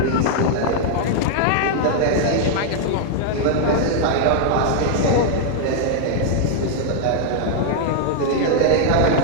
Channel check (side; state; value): both; different; correlation 0.00